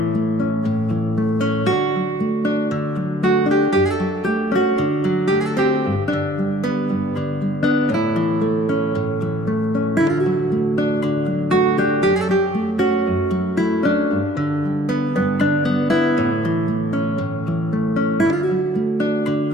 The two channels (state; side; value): normal; both; correlation 0.57